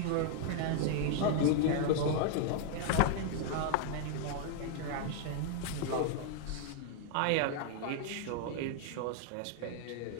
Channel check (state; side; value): different; both; correlation 0.00